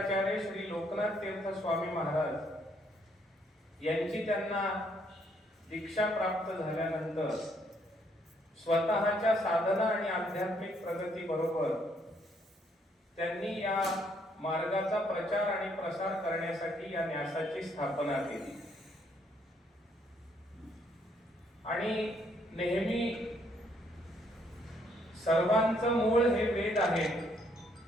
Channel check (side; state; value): both; normal; correlation 0.69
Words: श्री लोकनाथ तीर्थ स्वामी महाराज यांची त्यांना दीक्षा प्राप्त झाल्यानंतर स्वतःच्या साधना आणि आध्यात्मिक प्रगती बरोबर त्यांनी या मार्गाचा प्रचार आणि प्रसार करण्यासाठी या न्यासाची स्थापना केली। आणि नेहमी सर्वांचं मूळ हे वेद आहे